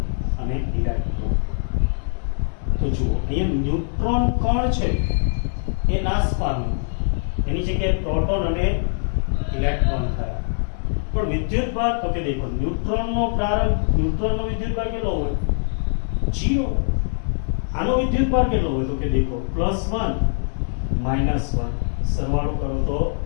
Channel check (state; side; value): silent; right; digital silence